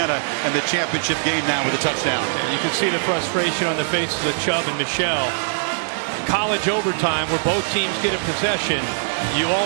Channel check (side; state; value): left; silent; 65 dB below the other